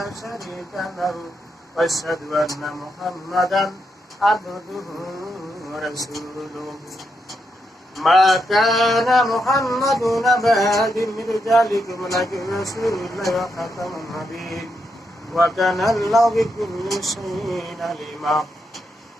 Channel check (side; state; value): both; normal; correlation 0.82